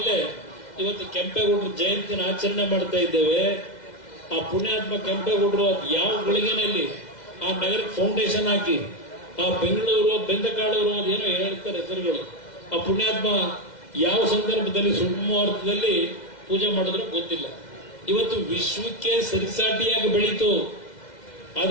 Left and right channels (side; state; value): right; late; 2.0 ms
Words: ಇವತ್ತು ಕೆಂಪೇಗೌಡರ ಜಯಂತಿನ ಆಚರಣೆ ಮಾಡ್ತಾ ಇದ್ದೇವೆ. ಆ ಪುಣ್ಯಾತ್ಮ ಕೆಂಪೇಗೌಡರು ಅದು ಯಾವ ಗಳಿಗೆನಲ್ಲಿ ಆ ನಗರಕ್ಕೆ ಫೌಂಡೇಶನ್ ಹಾಕಿ, ಆ ಬೆಂಗಳೂರು ಬೆಂದಕಾಳೂರು ಅದೇನೋ ಹೇಳ್ತಾರೆ ಹೆಸರುಗಳು, ಆ ಪುಣ್ಯಾತ್ಮ ಯಾವ ಸಂದರ್ಭದಲ್ಲಿ ಸುಮುಹೂರ್ತದಲ್ಲಿ ಪೂಜೆ ಮಾಡಿದ್ರು ಗೊತ್ತಿಲ್ಲ. ಇವತ್ತು ವಿಶ್ವಕ್ಕೆ ಸರಿಸಾಟಿಯಾಗಿ ಬೆಳೀತು.